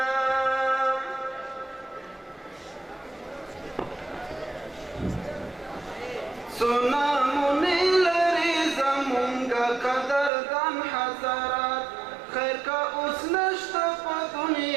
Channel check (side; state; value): left; drops out; at 10.3 s